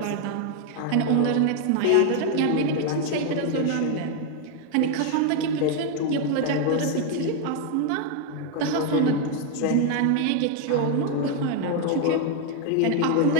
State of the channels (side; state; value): both; different; correlation 0.01